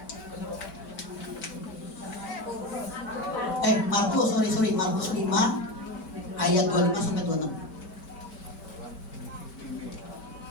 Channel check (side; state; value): right; late; 5.2 ms